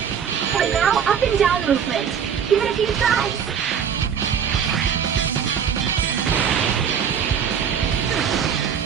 And now up and down movement. Give it a few tries.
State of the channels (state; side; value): quieter; left; 7.7 dB